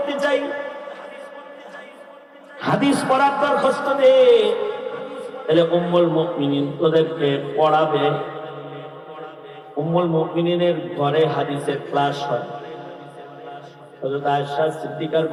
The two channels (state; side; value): identical; both; correlation 1.00